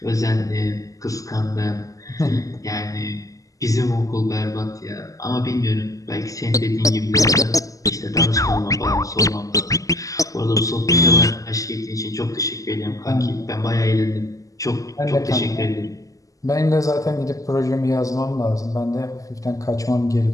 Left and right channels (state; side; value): late; right; 0.16 ms